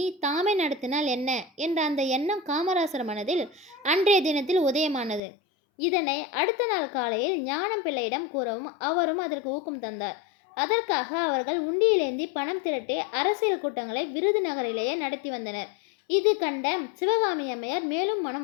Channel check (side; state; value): right; drops out; at 5.2 s